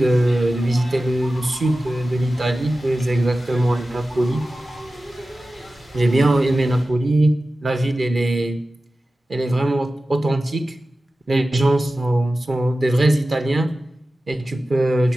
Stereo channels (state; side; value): normal; both; correlation 0.95